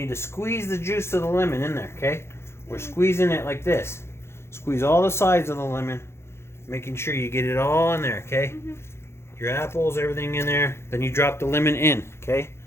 to squeeze the juice of the lemon in there, okay? We're squeezing it like this. Squeeze all the sides of the lemon, making sure you get it all in there, okay? Your apples, everything in there. Then you drop the lemon in, okay?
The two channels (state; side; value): late; right; 0.12 ms